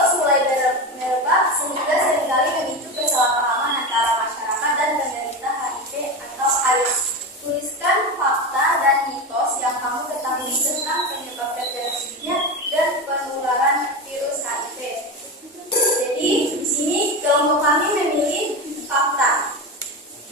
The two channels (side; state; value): both; normal; correlation 0.21